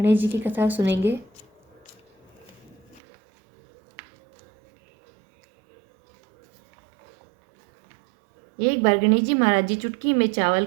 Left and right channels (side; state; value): left; drops out; at 3.0 s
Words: जी की कथा सुनेंगे। एक बार गणेश जी महाराज जी चुटकी में चावल